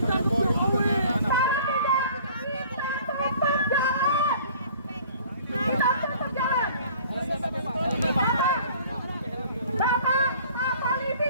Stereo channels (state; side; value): inverted; both; correlation -0.51